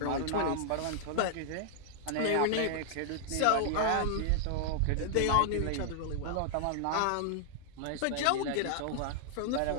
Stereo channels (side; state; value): both; different; correlation -0.01